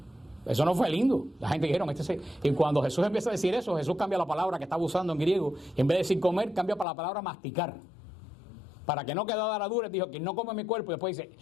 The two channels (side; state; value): right; drops out; at 6.9 s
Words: Eso no fue lindo. La gente dijeron, y cuando Jesús empieza a decir eso, Jesús cambia la palabra que estaba usando en griego, y en vez de decir comer, cambia para la palabra masticar. Para que no quedara dura, dijo, quien no come mi cuerpo, y después dice,